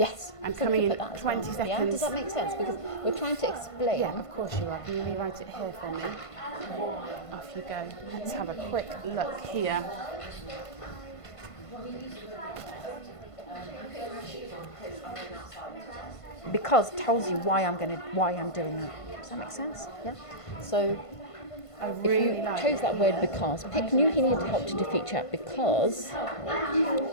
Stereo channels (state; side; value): late; right; 1.5 ms